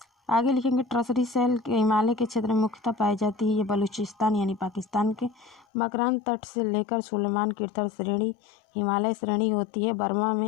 आगे लिखेंगे टर्शियरी शैल के हिमालय के क्षेत्र में मुख्यतः पाई जाती है। ये बलूचिस्तान यानी पाकिस्तान के मकरान तट से लेकर सुलेमान कीर्तन श्रेणी हिमालय श्रेणी होती है। बर्मा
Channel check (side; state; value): right; drops out; at 5.7 s